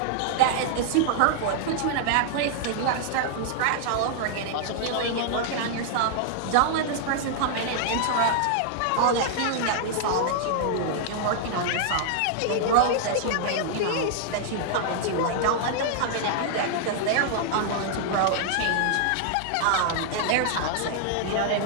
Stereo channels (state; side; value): different; both; correlation -0.01